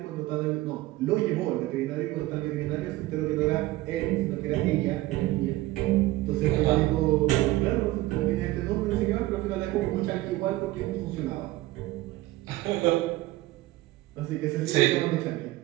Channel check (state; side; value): quieter; left; 17.8 dB